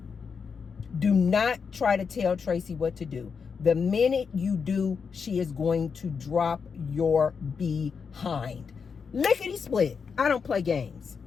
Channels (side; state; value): right; quieter; 5.9 dB